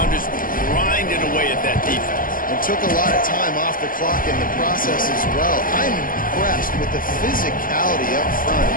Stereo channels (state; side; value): late; right; 0.40 ms